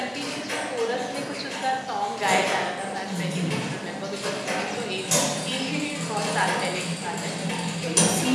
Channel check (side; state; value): both; identical; correlation 1.00